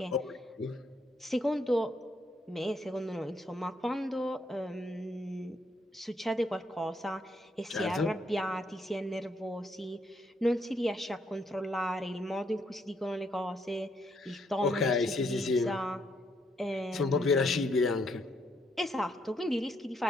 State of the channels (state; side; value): normal; both; correlation 0.74